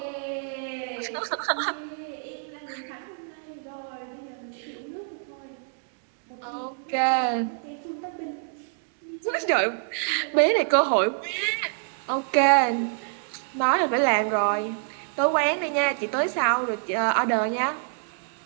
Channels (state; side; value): silent; left; digital silence